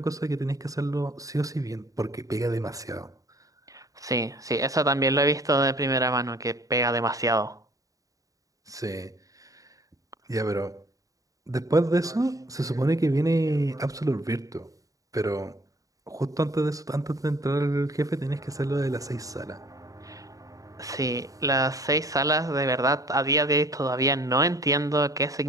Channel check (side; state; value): left; late; 0.16 ms